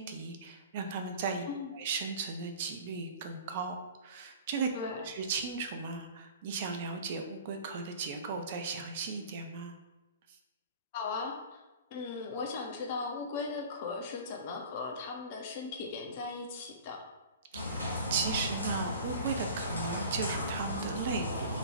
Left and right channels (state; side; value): inverted; both; correlation -0.40